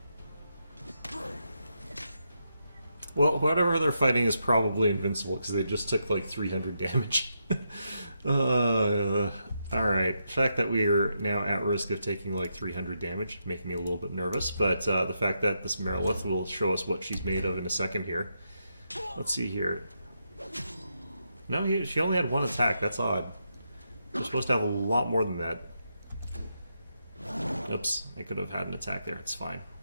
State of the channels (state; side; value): inverted; both; correlation -0.82